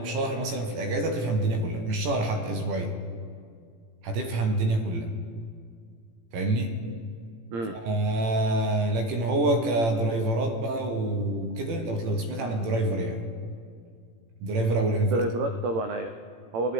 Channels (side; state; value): left; late; 18 ms